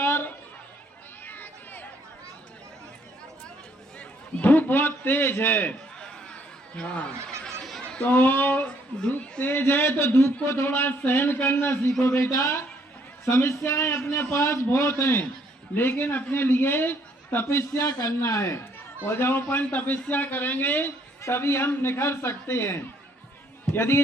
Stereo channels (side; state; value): both; normal; correlation 0.67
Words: धूप बहुत तेज है। हाँ, तो धूप तेज है तो धूप को थोड़ा सहन करना सीखो बेटा। समस्याएं अपने पास बहुत हैं, लेकिन अपने लिए तपस्या करना है। और जब अपन तपस्या करेंगे तभी हम निखर सकते हैं। यदि